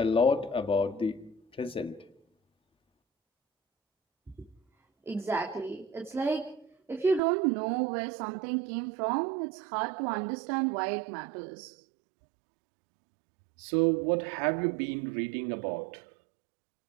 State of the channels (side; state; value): left; drops out; at 7.2 s